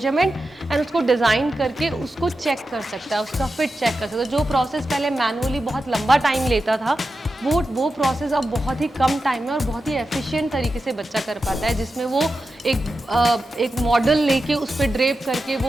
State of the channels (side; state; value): both; normal; correlation 0.91